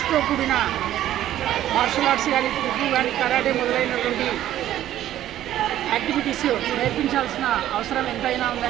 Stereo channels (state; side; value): quieter; left; 12.6 dB